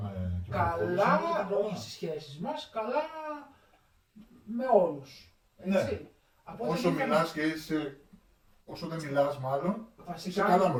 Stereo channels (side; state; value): both; identical; correlation 1.00